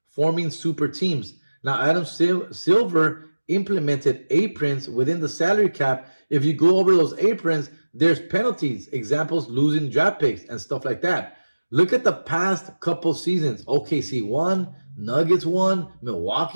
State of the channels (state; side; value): inverted; both; correlation -1.00